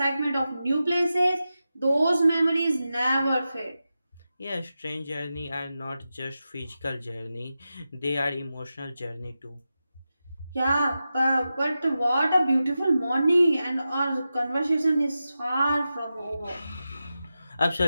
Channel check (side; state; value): both; inverted; correlation -0.92